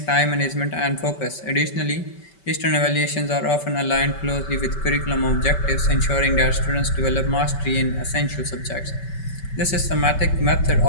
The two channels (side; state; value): right; late; 5.2 ms